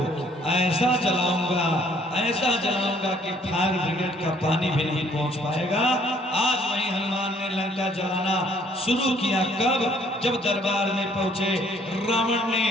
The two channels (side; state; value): both; normal; correlation 0.62